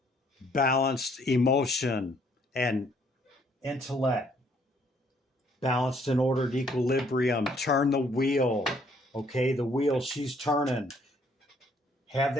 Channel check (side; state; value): both; normal; correlation 0.65